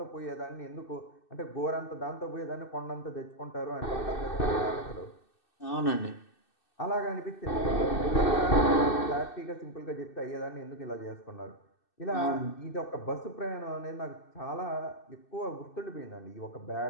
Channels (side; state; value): right; late; 2.6 ms